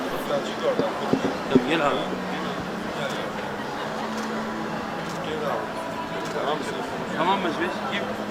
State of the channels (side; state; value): both; identical; correlation 1.00